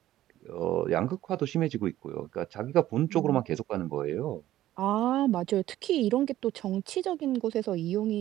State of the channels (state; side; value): quieter; left; 14.0 dB